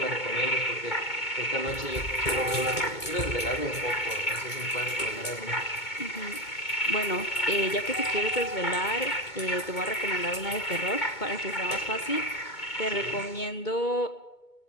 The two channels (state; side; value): late; right; 2.2 ms